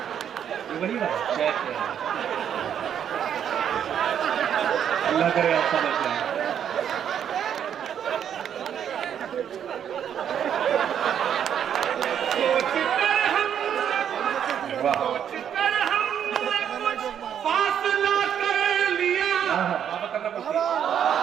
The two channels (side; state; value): left; quieter; 9.0 dB